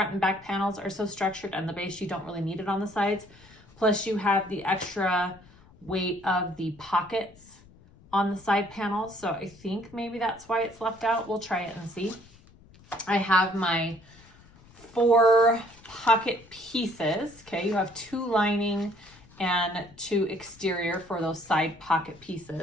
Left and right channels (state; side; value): noise; left; rumble, 25 dB below the sound